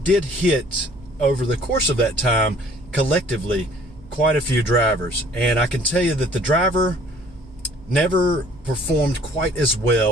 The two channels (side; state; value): right; noise; hum, 24 dB below the sound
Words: hit, over the course of that time, collectively, quite a few drivers. And I can tell you that the driver never performed quite as